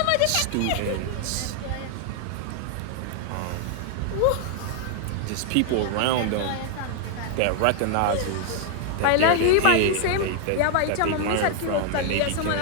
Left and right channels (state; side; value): different; both; correlation 0.00